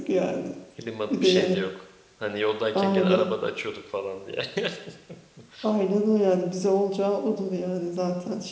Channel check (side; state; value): both; identical; correlation 1.00